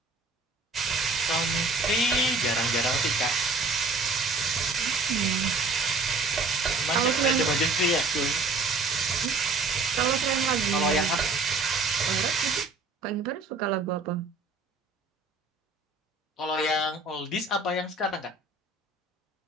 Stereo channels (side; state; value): left; quieter; 3.4 dB